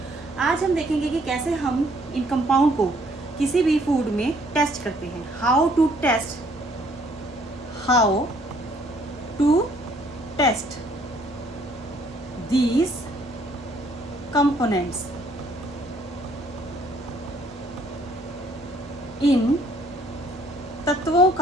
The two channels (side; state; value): both; normal; correlation 0.63